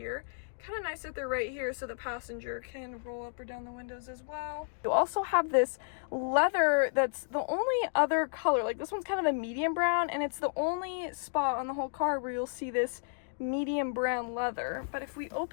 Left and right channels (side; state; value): right; silent; digital silence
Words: Kind of nice that they're right here so the passenger can roll up or down the windows as well. You also have this leather that's the only other color. Like this one's kind of a medium brown, and it's the only spot on the whole car where you'll see this medium brown leather. But if we